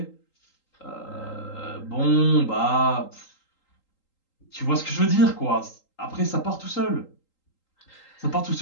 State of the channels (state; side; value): late; right; 3.8 ms